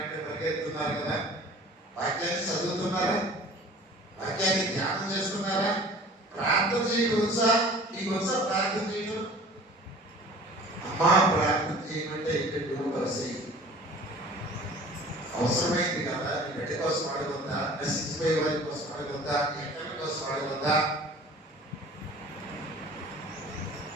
పరిగెత్తున్నారు కదా. వాక్యాన్ని చదువుతున్నారా? వాక్యాన్ని ధ్యానం చేస్తున్నారా? ప్రార్థన చేయడం వచ్చా? నీకు వచ్చా ప్రార్థన చేయడం? అమ్మా ప్రార్థన చేయమంటే ఇక్కడ పరిస్థితి అవసరమైంది కదా. నీ బిడ్డ కోసం అడగొద్దా? నశించిపోయే వారి కోసం అడగొద్దా? ఎక్కడి కోసం అడగొద్దా?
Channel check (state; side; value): normal; both; correlation 0.45